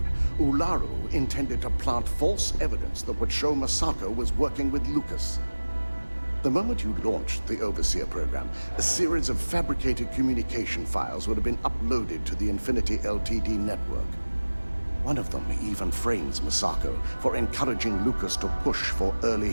Ularu intended to plant false evidence that would show Masako was working with Lucas. The moment you launched the Overseer program, a series of fabricated communication files would have been uploaded to the Infinity Ltd network. One of them even frames Masako for encouraging Lucas to push for early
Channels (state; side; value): inverted; both; correlation -1.00